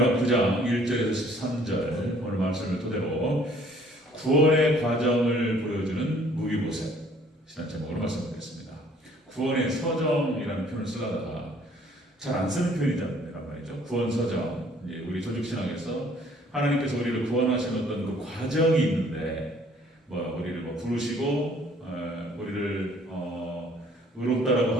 9장 1절에서 13절 오늘 말씀을 토대로 구원의 과정을 보여주는 무비보셋 신학 제목으로 말씀드리겠습니다. 구원의 서정이라는 표현을 쓰다가 잘 안 쓰는 표현이란 말이죠. 구원 서정. 이제 우리 조직 신학에서 하나님께서 우리를 구원하신 어떤 그 과정이 있는데, 우리를 부르시고, 우리를 의롭다라고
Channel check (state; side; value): normal; both; correlation 0.58